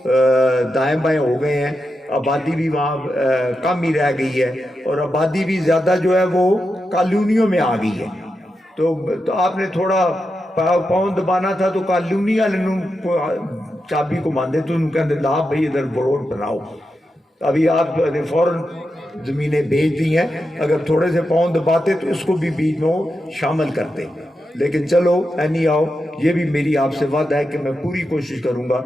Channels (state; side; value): normal; both; correlation 0.88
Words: دائیں بائیں ہو گئے ہیں, آبادی بھی وہاں کم ہی رہ گئی ہے, اور آبادی بھی زیادہ جو ہے وہ کالونیوں میں آ گئی ہے. تو آپ نے تھوڑا پاؤں دبانا تھا تو کالونی والے چابی کو ماندے تو ان کہتے لا بھائی ادھر روڈ بناؤ. ابھی آپ نے فوراً زمینیں بھیج دی ہیں, اگر تھوڑے سے پاؤں دباتے تو اس کو بھی بیچ میں شامل کرتے. لیکن چلو اینی آؤ, یہ بھی میری آپ سے وعدہ ہے کہ میں پوری کوشش کروں گا